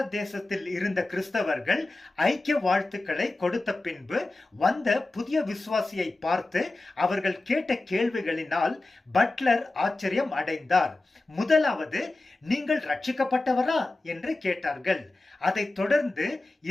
தேசத்தில் இருந்த கிறிஸ்தவர்கள் ஐக்கிய வாழ்த்துக்களை கொடுத்த பின்பு வந்த புதிய விசுவாசியை பார்த்து அவர்கள் கேட்ட கேள்விகளினால் பட்லர் ஆச்சரியம் அடைந்தார். முதலாவது, நீங்கள் ரட்சிக்கப்பட்டவரா என்று கேட்டார்கள். அதைத் தொடர்ந்து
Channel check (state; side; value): quieter; right; 3.0 dB